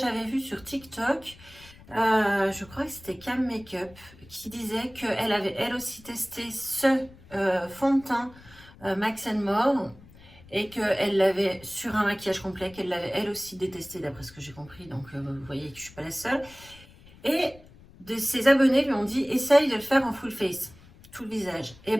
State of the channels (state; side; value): noise; left; rumble, 23 dB below the sound